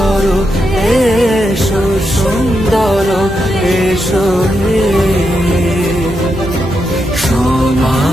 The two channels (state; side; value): normal; both; correlation 0.84